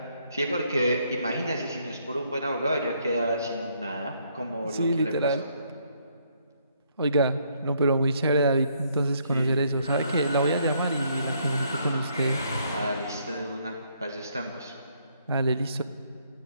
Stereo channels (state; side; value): inverted; both; correlation -0.70